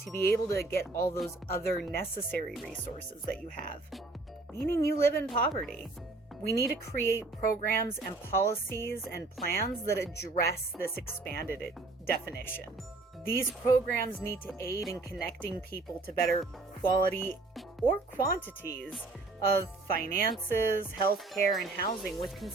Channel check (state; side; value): quieter; left; 3.3 dB